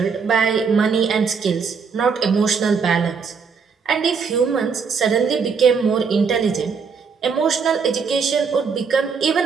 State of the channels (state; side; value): quieter; left; 5.7 dB